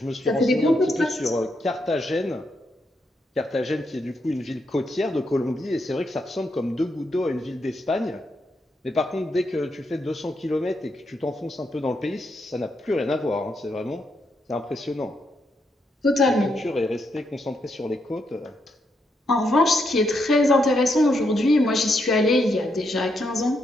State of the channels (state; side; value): normal; both; correlation 0.80